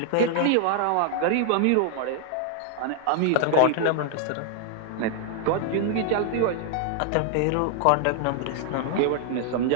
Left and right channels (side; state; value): both; different; correlation -0.01